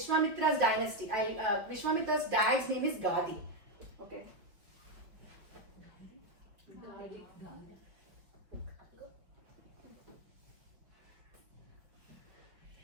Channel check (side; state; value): left; late; 5.3 ms